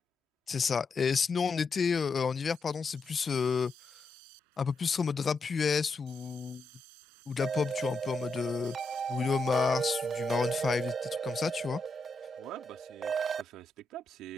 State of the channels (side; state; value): right; quieter; 3.1 dB